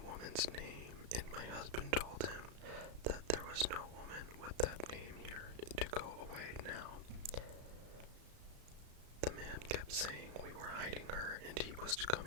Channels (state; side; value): late; left; 34 ms